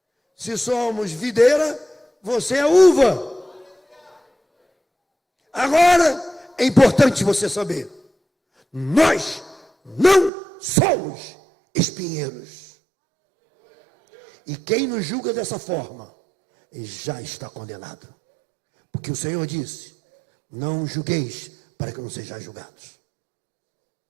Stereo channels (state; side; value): drops out; left; at 10.3 s